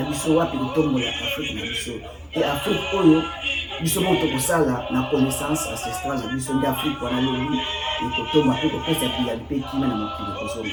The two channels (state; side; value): identical; both; correlation 1.00